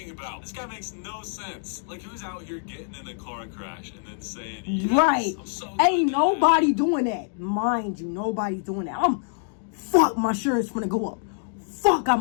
about? This guy makes no sense. Like, who's out here getting in a car crash and then saying, yes, Right. I'm so Ain't good at nobody doing that. Mind you, nobody's doing that. Fuck, my insurance gonna go up. Fuck, I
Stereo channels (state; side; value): silent; right; digital silence